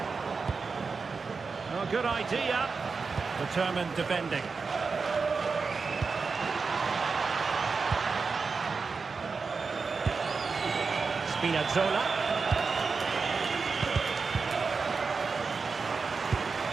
Oh, good idea. Determined defending. Spinazzola.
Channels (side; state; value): left; quieter; 4.8 dB